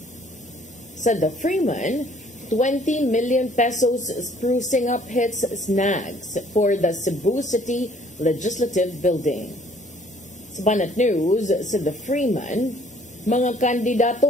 Sa The Freeman, 20 million pesos sprucing up hits snags for the Cebu City Legislative Building. Sa Banat News, sa The Freeman, mga kandidato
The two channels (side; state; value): both; normal; correlation 0.59